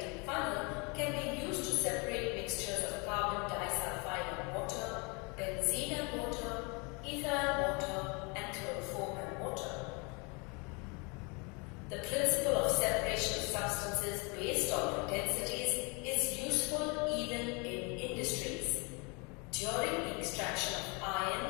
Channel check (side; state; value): right; quieter; 31.0 dB